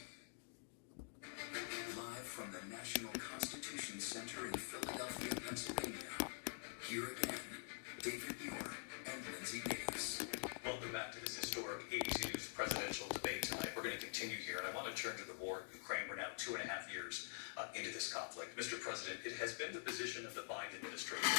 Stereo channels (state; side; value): silent; right; digital silence